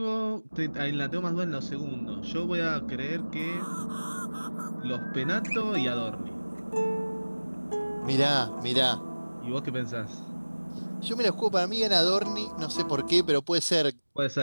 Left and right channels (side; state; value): both; inverted; correlation -1.00